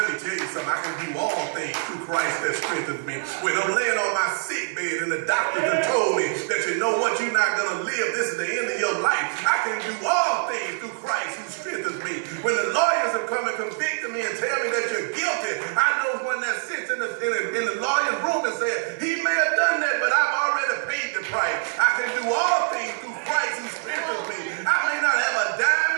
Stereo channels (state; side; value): silent; left; 62 dB below the other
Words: me tell you something. I can do all things through Christ that strengthens me. When I'm laying on my sick bed and the doctor done told me that you know what, you're not going to live. This is the end of your life. I can do all things through Christ who strengthens me. When the lawyers have come and convicted me and tell me that you're guilty, I know one that sits in the lawyer's room and says, he may have done that, but I've already paid the price. I can do all things through Christ who strengthens me. I may not have a dime